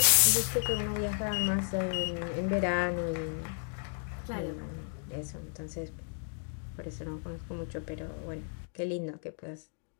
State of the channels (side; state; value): right; silent; 56 dB below the other